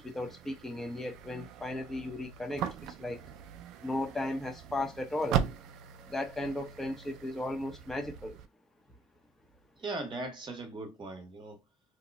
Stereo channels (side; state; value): both; normal; correlation 0.65